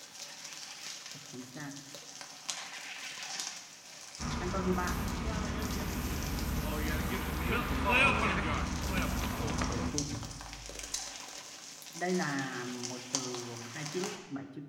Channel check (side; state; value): both; identical; correlation 1.00